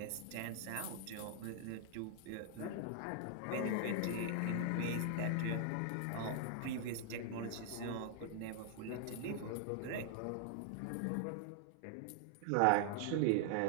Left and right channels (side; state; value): both; different; correlation 0.00